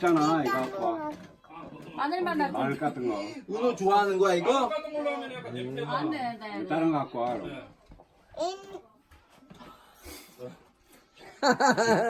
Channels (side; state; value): both; identical; correlation 1.00